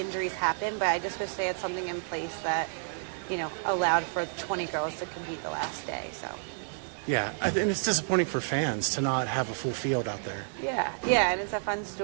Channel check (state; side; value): silent; left; digital silence